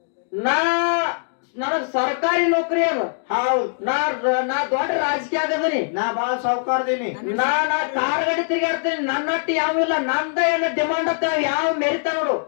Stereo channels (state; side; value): silent; right; digital silence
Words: ನನಗ್ ಸರ್ಕಾರಿ ನೌಕರಿ ಅದ. ಹೌದು. ನಾ ದೊಡ್ಡ ರಾಜಕೀಯ ಆಗದನಿ. ನಾ ಬಾಳ ಸಾವುಕಾರದೀನಿ. ನಾ ಕಾರ್ ಗಾಡಿ ತಿರ್ಗಾಡ್ತೀನಿ. ನನ್ನಟ್ಟಿ ಯಾವಿಲ್ಲ. ನಂದ ಏನ ಡಿಮಾಂಡ್ ಅಂತ ಯಾವ ಮೆರಿತ ನೋಡು.